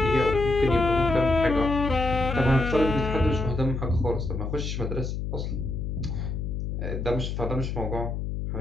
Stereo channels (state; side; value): noise; left; hum, 3 dB below the sound